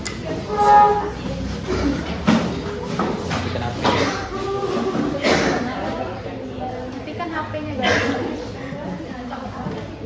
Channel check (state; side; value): identical; both; correlation 1.00